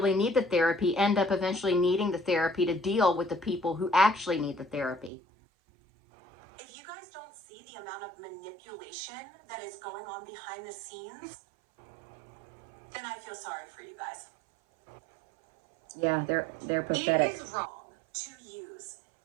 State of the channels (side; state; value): left; drops out; at 5.1 s